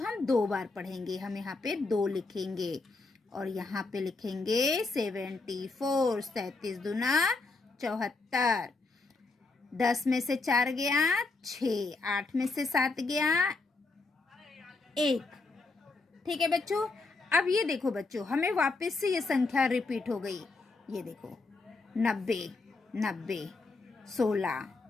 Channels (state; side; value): quieter; right; 3.7 dB